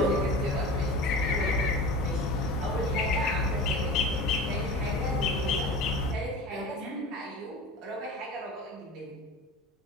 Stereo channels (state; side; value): normal; both; correlation 0.34